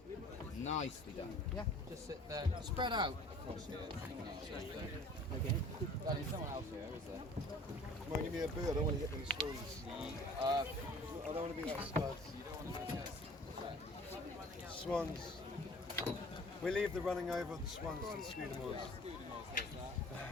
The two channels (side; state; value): both; normal; correlation 0.49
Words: Nicely done. Yeah, just sit there. Spread out across here. Okay. There's someone else here, is there? Come on, give me a boo. I don't want to hit them swans. I don't want to be like studs. You don't want to go. Swans. We leave the running over of the swans to the Scudamores.